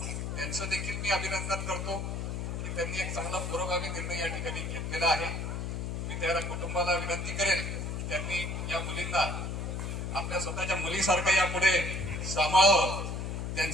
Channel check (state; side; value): noise; left; hum, 3 dB below the sound